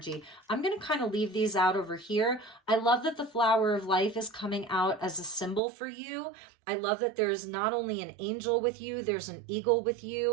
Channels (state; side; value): drops out; left; at 5.6 s